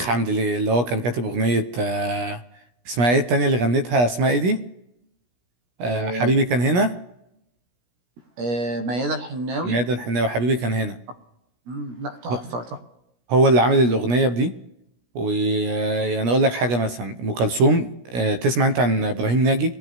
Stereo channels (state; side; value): late; left; 17 ms